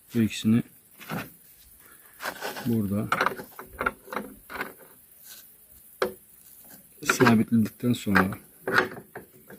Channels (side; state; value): both; identical; correlation 1.00